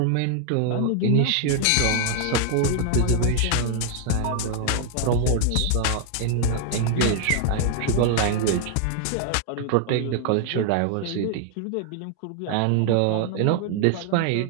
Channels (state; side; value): different; both; correlation 0.00